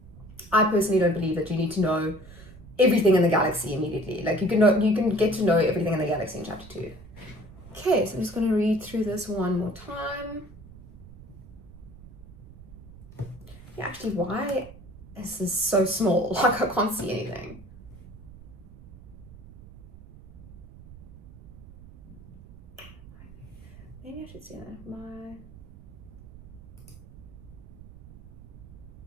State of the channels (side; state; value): right; noise; rumble, 19 dB below the sound